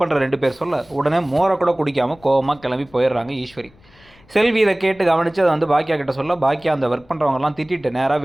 பண்ணுற 2 பேர் சொல்ல உடனே மோரை கூட குடிக்காமல் கோவமாக கிளம்பி போயிடுறாங்க ஈஸ்வரி. செல்வி இதை கேட்டு கவனித்து அதை வந்து பாக்கியா கிட்ட சொல்ல பாக்கியா அந்த ஒர்க் பண்ணுறவங்கலாம் திட்டிட்டு நேராக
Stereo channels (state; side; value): noise; left; rumble, 28 dB below the sound